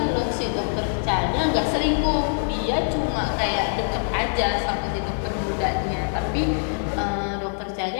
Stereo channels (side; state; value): right; silent; digital silence